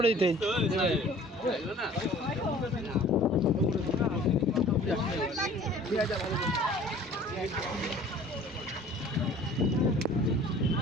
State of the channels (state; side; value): normal; both; correlation 0.49